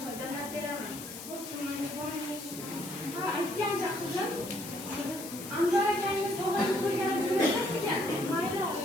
choy damlab beraman. Ha, aytgancha qizim. Anvar akangiz sog'inib ko'rgani jo'natasiz-ekan. Mayli,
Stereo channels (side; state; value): left; noise; hiss, 11 dB below the sound